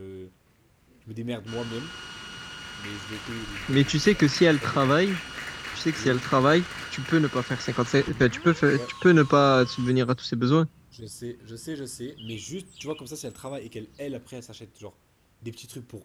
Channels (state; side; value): identical; both; correlation 1.00